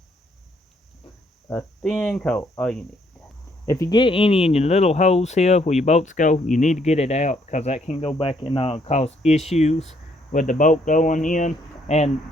thin coat, all you need. If you get any in your little holes here where your bolts go, you need to get it out, because that can go back and cause issues with the bolt going in and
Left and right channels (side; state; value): both; normal; correlation 0.69